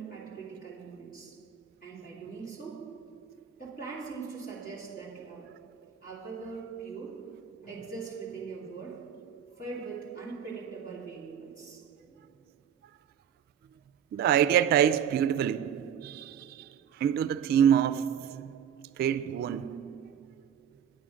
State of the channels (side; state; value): left; quieter; 8.9 dB